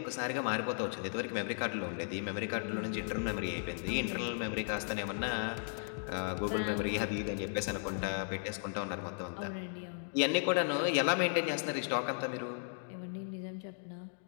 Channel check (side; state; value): right; silent; digital silence